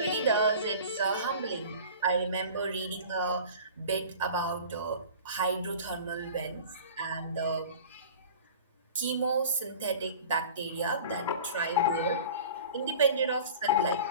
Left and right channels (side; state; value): both; inverted; correlation -0.40